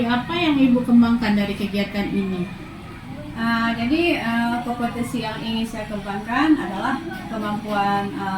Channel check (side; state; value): both; identical; correlation 1.00